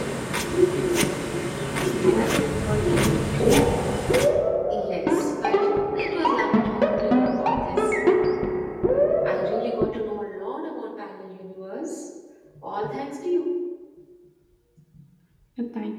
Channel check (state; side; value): identical; both; correlation 1.00